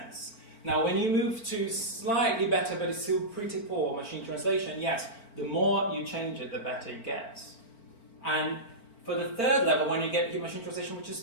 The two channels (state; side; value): late; right; 4.4 ms